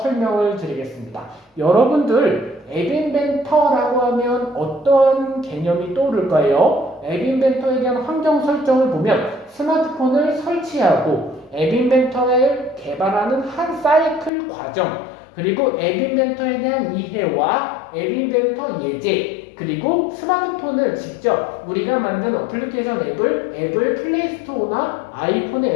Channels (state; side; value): drops out; right; at 14.3 s